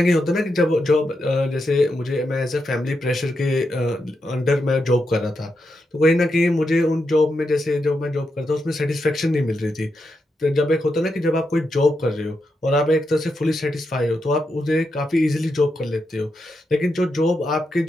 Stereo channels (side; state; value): both; normal; correlation 0.85